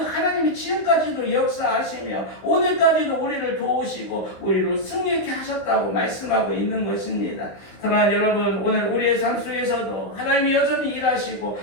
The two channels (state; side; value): late; right; 16 ms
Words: 하나님이 지금까지도 역사하시며 오늘까지도 우리를 도우시고 우리를 승리케 하셨다고 말씀하고 있는 것입니다. 사랑하는 여러분, 오늘 우리의 삶 속에서도 하나님이 여전히 일하시고